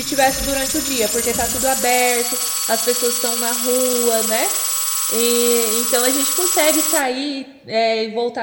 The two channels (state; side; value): identical; both; correlation 1.00